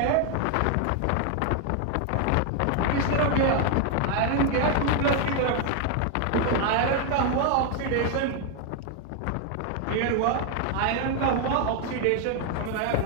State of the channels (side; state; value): both; different; correlation 0.01